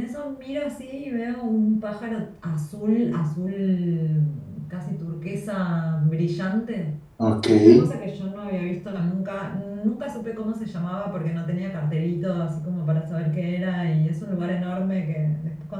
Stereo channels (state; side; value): identical; both; correlation 1.00